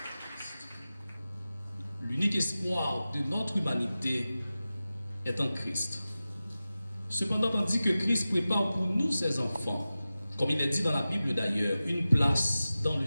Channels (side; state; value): both; inverted; correlation -0.95